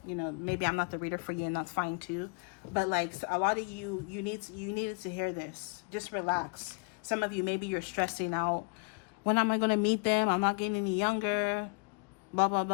You know, maybe I'm not the reader for you, and that's fine too. But like a lot of you needed to hear this. Just relax. Some of you, maybe you're stressing out. When am I going to meet them? I'm not getting any younger. Blah, blah,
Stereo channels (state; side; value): quieter; right; 33.0 dB